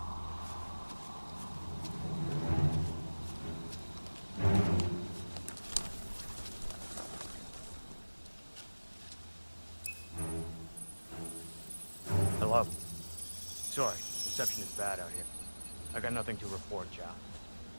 Hello. Sorry, reception is bad out here. I got nothing to report, Chow.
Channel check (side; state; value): both; inverted; correlation -1.00